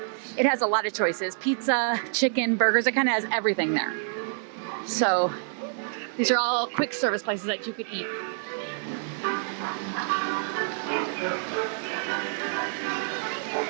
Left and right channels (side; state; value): left; silent; 60 dB below the other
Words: It has a lot of choices, pizza, chicken, burgers, it kind of has everything there. So these are all quick service places that you could eat.